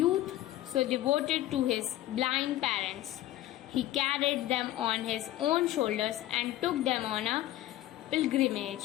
so devoted to his blind parents. He carried them on his own shoulders and took them on a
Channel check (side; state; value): right; quieter; 14.5 dB